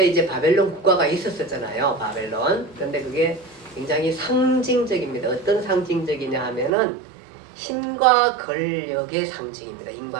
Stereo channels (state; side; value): drops out; left; at 6.7 s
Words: 이제 바벨론 국가가 있었잖아요. 바벨론. 그런데 그게 굉장히 상징적입니다. 어떤 상징적이냐 하면은 힘과 권력의 상징입니다.